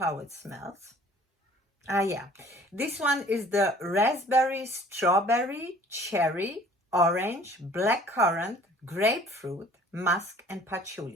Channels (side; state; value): both; normal; correlation 0.52